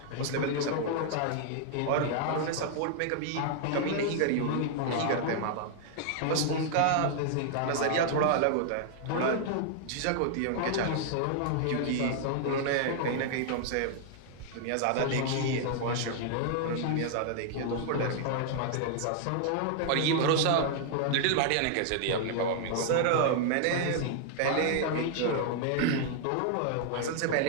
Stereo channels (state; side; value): different; both; correlation -0.01